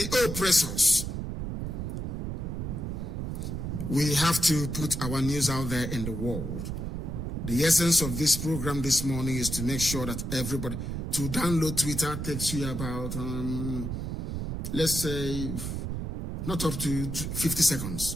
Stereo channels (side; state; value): right; noise; rumble, 4 dB below the sound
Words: oppressors. We have to put our news out there in the world. The essence of this program this morning is to make sure that everybody, to download Twitter takes you about, let's say, not up to 50 seconds.